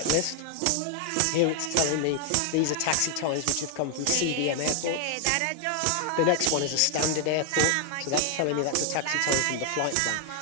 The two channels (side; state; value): both; different; correlation 0.00